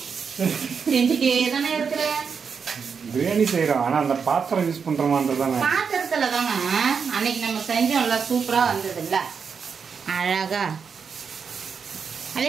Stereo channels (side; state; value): left; quieter; 6.1 dB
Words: செஞ்சுட்டே தானே இருக்கிற. பிரியாணி செய்யறோம், ஆனா அந்த பாத்திரம் யூஸ் பண்றோமான்றதானே. பாத்திரத்துல தாங்க அன்னைக்கு நம்ம செஞ்சோம்ல, சூப்பரா வந்தது இல்ல, அழகா. அதே